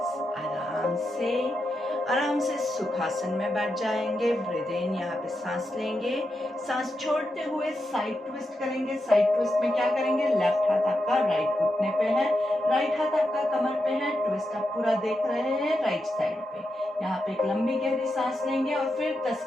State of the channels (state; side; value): normal; both; correlation 0.87